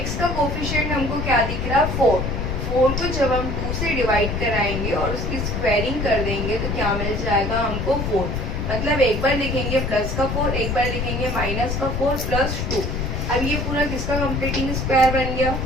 x का कोफिशिएंट हमको क्या दिख रहा है? 4। 4 को जब हम 2 से डिवाइड कराएंगे और उसकी स्क्वायरिंग कर देंगे तो क्या मिल जाएगा हमको? 4। मतलब एक बार लिखेंगे प्लस का 4, एक बार लिखेंगे माइनस का 4 + 2। अब ये पूरा किसका कंप्लीटिंग स्क्वायर बन गया?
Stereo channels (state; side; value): noise; left; rumble, 2 dB below the sound